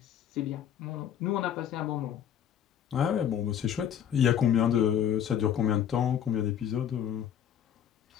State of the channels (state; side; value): quieter; right; 9.4 dB